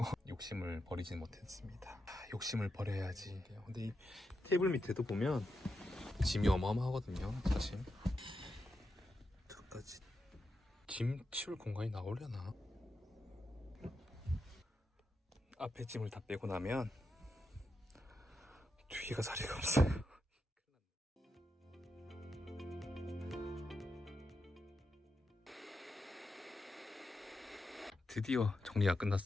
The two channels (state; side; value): normal; both; correlation 0.87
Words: 욕심을 버리진 못했습니다. 욕심을 버려야지. 근데 이 테이블 밑에도 보면 짐이 어마어마하거든요. 사실 저까지 짐 치울 공간이 나오려나? 앞에 짐을 다 빼고 나면 뒤에가 자리가 없어요. 드디어 정리가